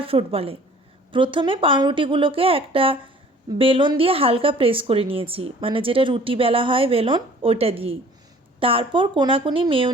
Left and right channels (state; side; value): normal; both; correlation 0.51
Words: ফ্রুট বলে। প্রথমে পাউরুটিগুলোকে একটা বেলন দিয়ে হালকা প্রেস করে নিয়েছি, মানে যেটা রুটি বেলা হয় বেলন, ওইটা দিয়েই। তারপর কোনাকুনি